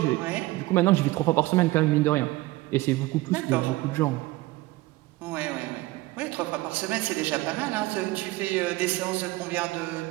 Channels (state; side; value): quieter; left; 19.5 dB